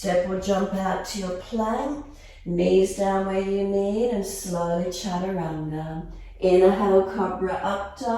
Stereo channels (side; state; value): both; identical; correlation 1.00